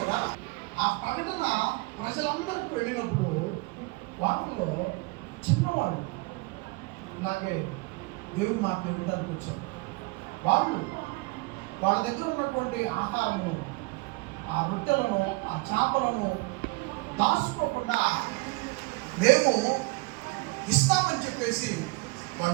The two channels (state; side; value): quieter; left; 25.6 dB